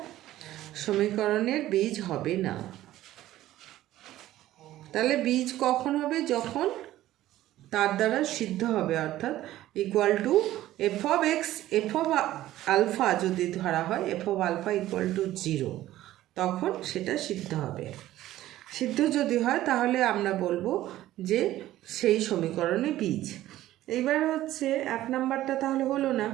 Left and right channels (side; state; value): left; quieter; 14.5 dB